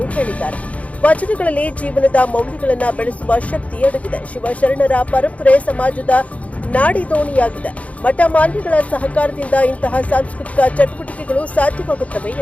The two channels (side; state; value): right; late; 0.067 ms